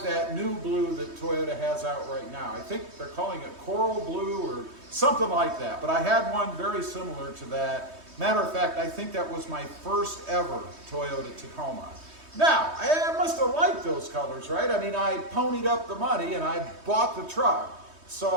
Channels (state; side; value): late; left; 3.2 ms